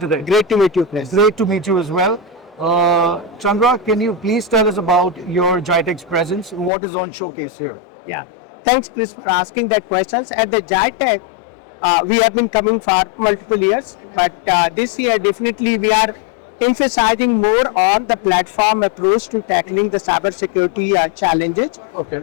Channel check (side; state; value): right; drops out; at 6.7 s